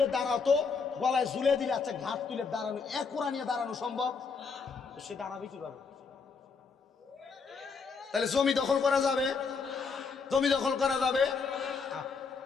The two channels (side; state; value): right; quieter; 5.1 dB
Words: দাঁড়াও, তো গলায় ঝুলে দিলে আচ্ছা ঘাট তুলে দাঁড়ানো, এক কোড়া নিয়ে দাঁড়ানো সম্ভব? সে দাঁড়াবে কিভাবে? তাহলে জমি দখল করা যাবে? জমি দখল করা যাবে?